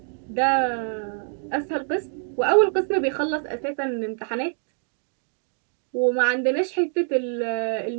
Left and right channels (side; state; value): left; silent; 59 dB below the other